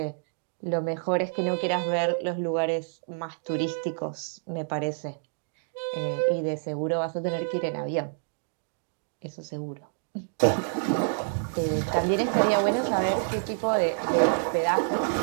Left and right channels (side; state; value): left; silent; digital silence